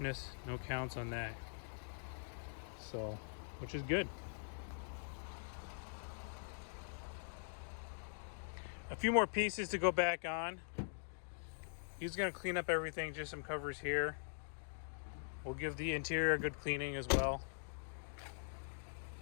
no counts on that. So, which is good. A few more pieces to go back on. He's gonna clean up everything, just some covers here. We'll give the interior a good cleaning as well.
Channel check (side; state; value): right; silent; digital silence